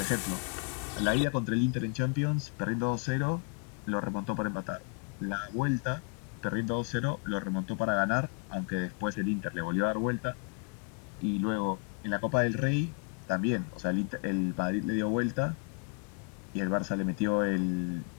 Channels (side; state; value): right; quieter; 36.7 dB